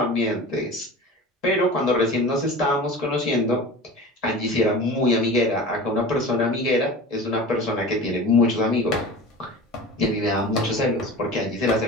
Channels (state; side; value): normal; both; correlation 0.35